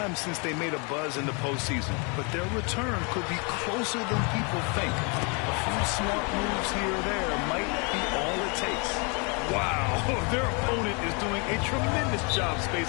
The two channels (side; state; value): right; quieter; 33.4 dB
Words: since they made a buzz in the postseason, but their return could be closer than people think. A few smart moves here or there might be all it takes. Wow, their opponent is doing a tremendous job